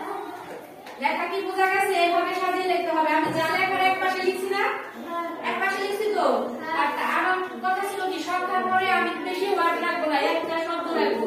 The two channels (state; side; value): identical; both; correlation 1.00